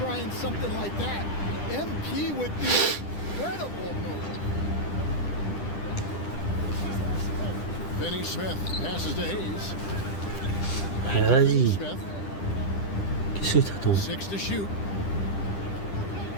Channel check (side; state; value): right; late; 10 ms